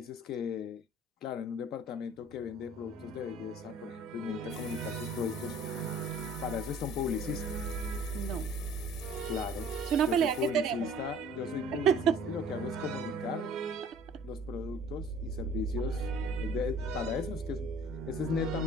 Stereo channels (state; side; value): normal; both; correlation 0.50